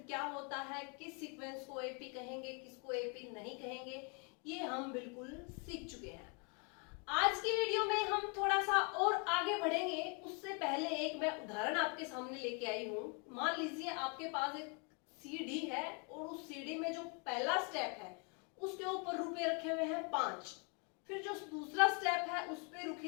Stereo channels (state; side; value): quieter; right; 35.7 dB